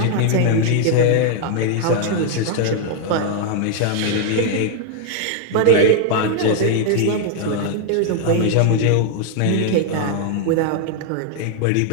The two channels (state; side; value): different; both; correlation 0.00